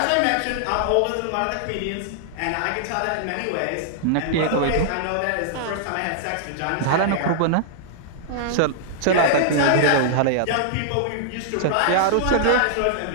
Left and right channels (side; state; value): both; different; correlation -0.01